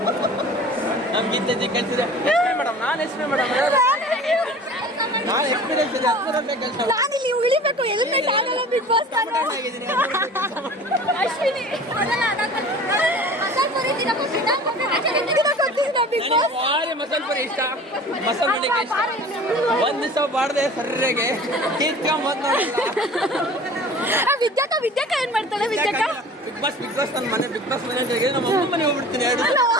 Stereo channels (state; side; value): normal; both; correlation 0.42